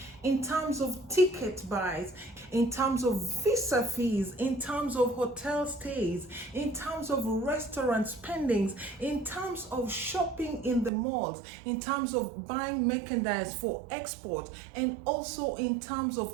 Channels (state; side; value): drops out; left; at 10.9 s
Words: in terms of ticket buys, in terms of visa fees, in terms of hotel stays, in terms of restaurant spendings, in terms of shopping in the malls, in terms of buying merchandise for export, and also in terms